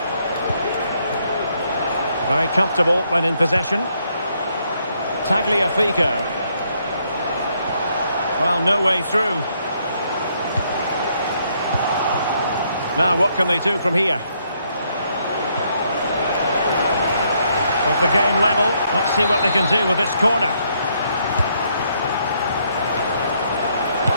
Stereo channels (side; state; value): both; inverted; correlation -0.72